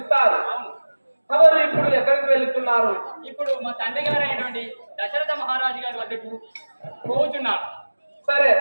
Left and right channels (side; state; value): both; inverted; correlation -1.00